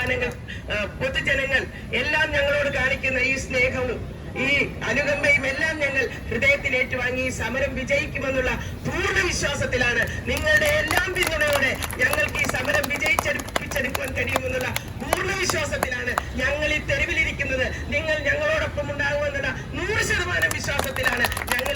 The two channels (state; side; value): identical; both; correlation 1.00